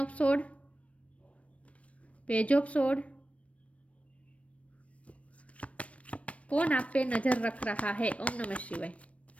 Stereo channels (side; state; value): right; late; 0.064 ms